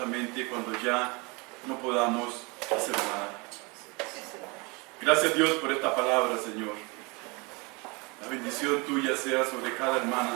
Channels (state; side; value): quieter; left; 28.5 dB